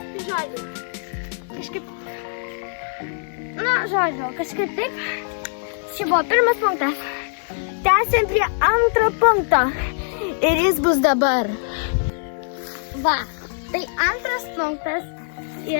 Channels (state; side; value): silent; right; digital silence